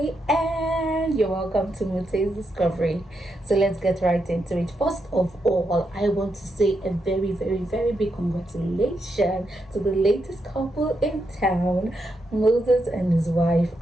and you're welcome to Mute's Discovery. So let's get right into it. First of all, I want to say a very big congratulations to the latest couple in town, Moses and his wife.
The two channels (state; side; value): normal; both; correlation 0.83